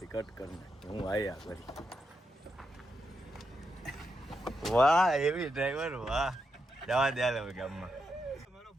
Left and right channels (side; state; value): both; normal; correlation 0.84